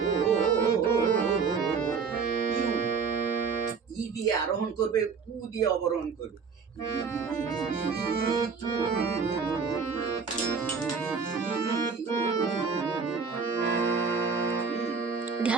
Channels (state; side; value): quieter; left; 5.5 dB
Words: ই দিয়ে আরোহণ করবে, উ দিয়ে অবরোহণ করবে।